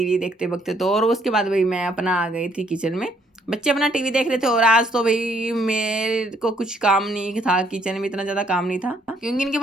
देखते वक्त। तो और उसके बाद भाई मैं अपना आ गई थी किचन में, बच्चे अपना टीवी देख रहे थे। और आज तो भाई मेरे को कुछ काम नहीं था, किचन में इतना ज़्यादा काम नहीं था, क्योंकि इनके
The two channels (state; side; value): normal; both; correlation 0.67